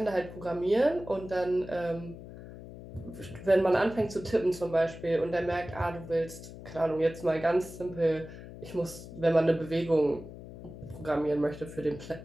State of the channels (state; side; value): noise; left; hum, 14 dB below the sound